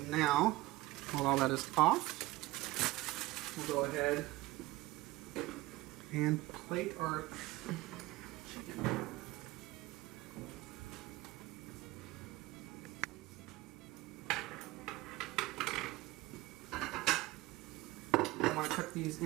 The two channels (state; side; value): quieter; left; 19.1 dB